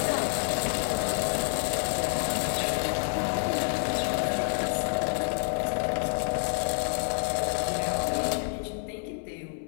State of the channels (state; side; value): silent; right; 58 dB below the other